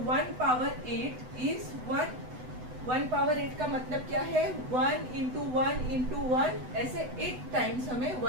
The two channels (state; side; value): late; left; 8.0 ms